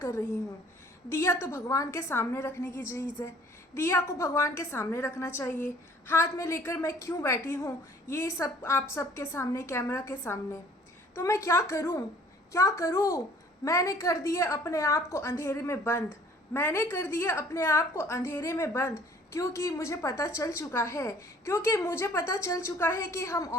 रही हूँ। दिया तो भगवान के सामने रखने की चीज़ है, दिया को भगवान के सामने रखना चाहिए। हाथ में लेकर मैं क्यों बैठी हूँ ये सब आप सबके सामने, कैमरा के सामने। तो मैं क्या करूँ, क्या करूँ। मैंने कर दिए अपने आप को अंधेरे में बंद, मैंने कर दिया अपने आप को अंधेरे में बंद, क्योंकि मुझे पता चल चुका है, क्योंकि मुझे पता चल चुका है कि हम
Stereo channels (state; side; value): normal; both; correlation 0.54